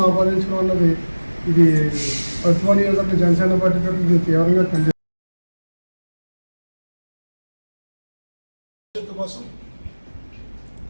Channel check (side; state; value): both; inverted; correlation -1.00